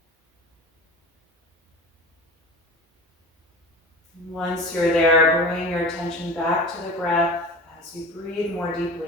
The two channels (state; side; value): normal; both; correlation 0.35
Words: Once you're there, bring your attention back to the breath as you breathe more